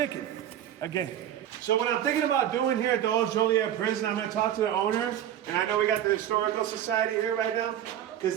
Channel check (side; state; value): left; quieter; 10.9 dB